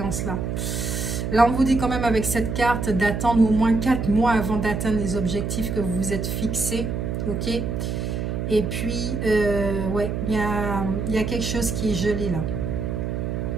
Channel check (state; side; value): noise; right; hum, 2 dB below the sound